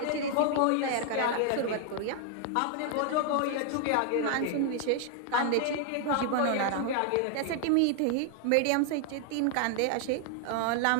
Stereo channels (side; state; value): both; different; correlation 0.00